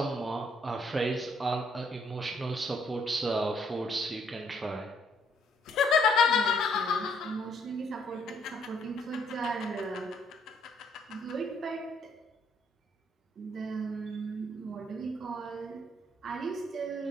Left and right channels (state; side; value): normal; both; correlation 0.67